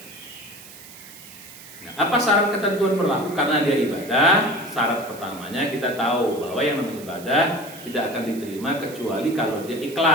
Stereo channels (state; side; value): noise; right; hiss, 17 dB below the sound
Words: Nah, apa syarat ketentuan berlaku? Karena dia ibadah, syarat pertamanya kita tahu bahwa yang namanya ibadah tidak akan diterima kecuali kalau dia